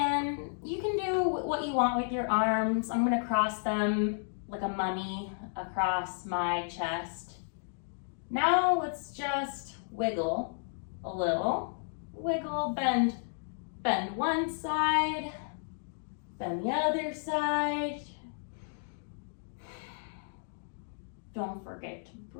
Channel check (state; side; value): silent; right; digital silence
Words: do what you want with your arms. I'm gonna cross them like a mummy across my chest. Now let's just wiggle a little. Wiggle, bend one side, bend the other side. Don't forget to